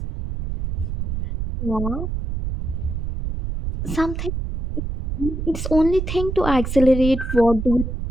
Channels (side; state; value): right; noise; rumble, 4 dB below the sound